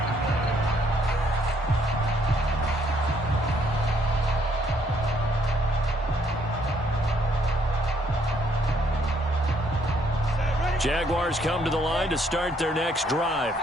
Jaguars come to the line to start their next drive.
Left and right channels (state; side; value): normal; both; correlation 0.68